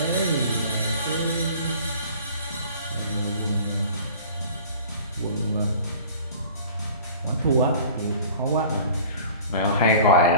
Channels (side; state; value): both; inverted; correlation -0.45